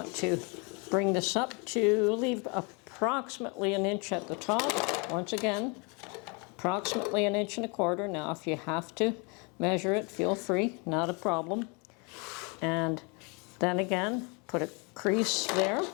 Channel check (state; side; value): quieter; right; 32.3 dB